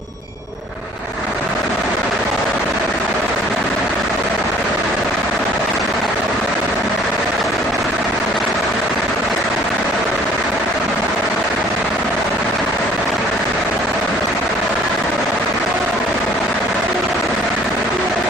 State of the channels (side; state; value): both; normal; correlation 0.55